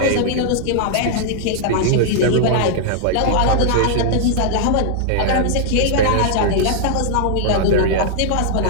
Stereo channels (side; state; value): both; different; correlation -0.01